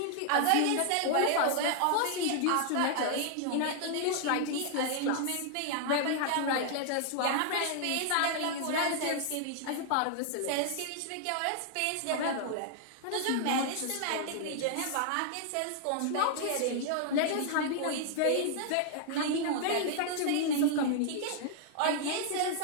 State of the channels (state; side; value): different; both; correlation 0.00